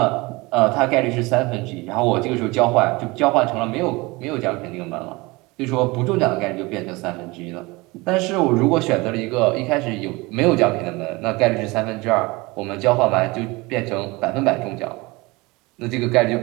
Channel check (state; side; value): quieter; left; 23.7 dB